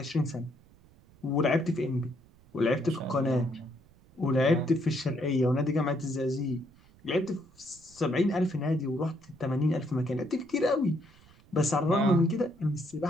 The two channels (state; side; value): noise; right; rumble, 27 dB below the sound